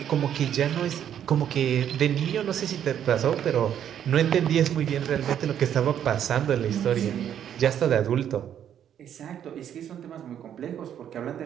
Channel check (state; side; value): quieter; left; 9.7 dB